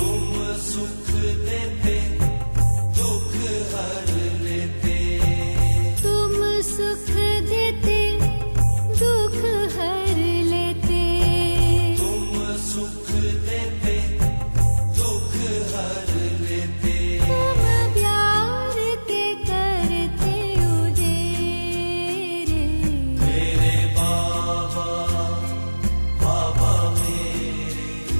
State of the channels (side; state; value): both; inverted; correlation -1.00